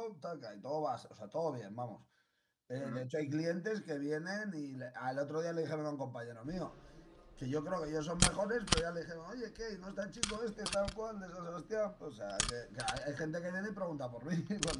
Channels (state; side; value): identical; both; correlation 1.00